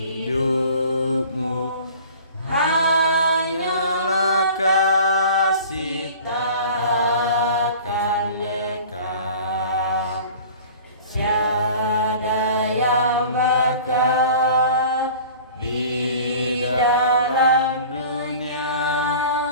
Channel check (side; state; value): both; inverted; correlation -0.44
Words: hidupmu? Hanyalah kasih tak akan lekang. Tiada yang bakal di dalam dunia.